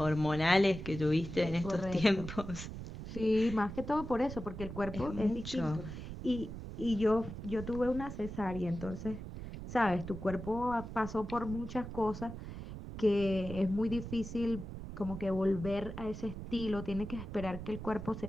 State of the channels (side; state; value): right; noise; rumble, 9 dB below the sound